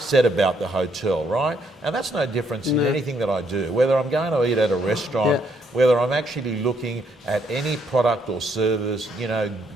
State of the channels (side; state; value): both; normal; correlation 0.71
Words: about the hotel, right? And that's no difference in anything that I do, whether I'm going to eat at a restaurant, whether I'm actually looking at any product or service.